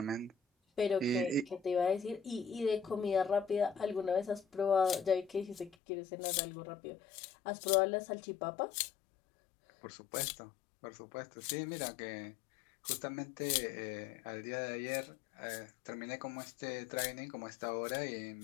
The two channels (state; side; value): drops out; right; at 5.8 s